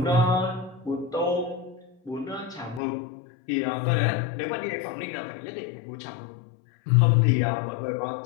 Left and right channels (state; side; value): drops out; right; at 2.8 s